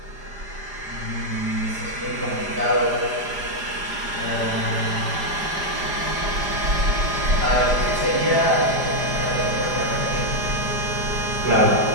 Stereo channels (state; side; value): late; left; 5.0 ms